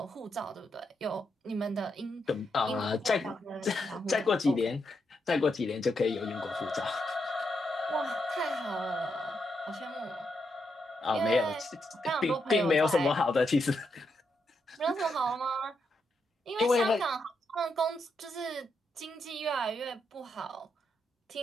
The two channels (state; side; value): normal; both; correlation 0.81